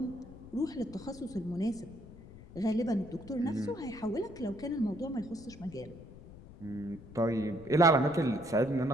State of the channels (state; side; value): noise; left; rumble, 17 dB below the sound